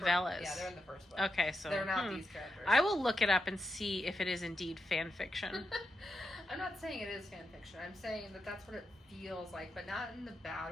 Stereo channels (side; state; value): both; normal; correlation 0.86